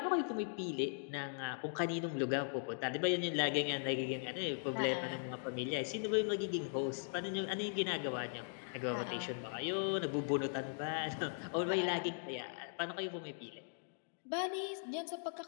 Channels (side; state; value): right; silent; digital silence